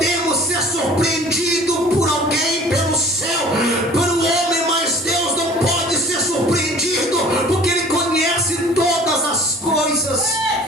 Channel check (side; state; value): both; normal; correlation 0.48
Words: ser surpreendidos por alguém, pelo céu, pelo homem, mas Deus não pode ser surpreendido, porque Ele conhece todas as coisas.